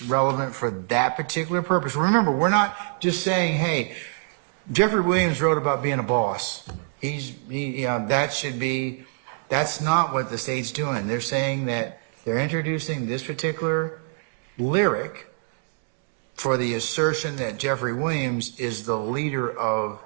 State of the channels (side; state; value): left; silent; 62 dB below the other